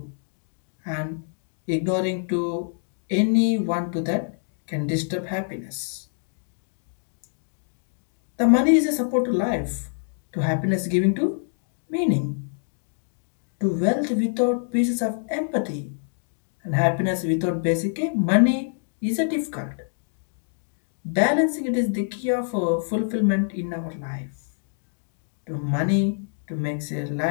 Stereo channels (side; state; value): right; silent; digital silence